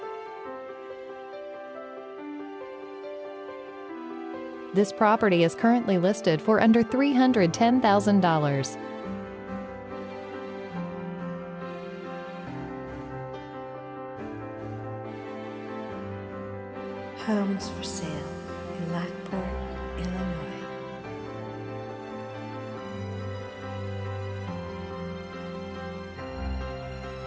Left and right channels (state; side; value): identical; both; correlation 1.00